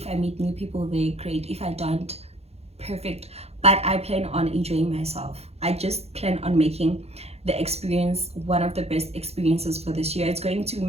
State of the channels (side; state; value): left; late; 0.30 ms